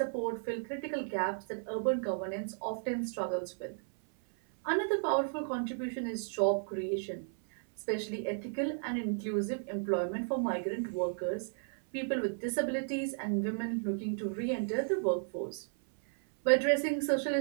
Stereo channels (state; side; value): silent; left; 55 dB below the other